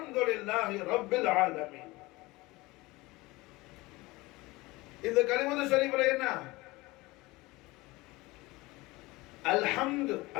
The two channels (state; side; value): quieter; right; 21.5 dB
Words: ரப்பில் ஆலமீன். இந்த கலிமத்து ஷரீஃப்ல என்ன அல்ஹம்து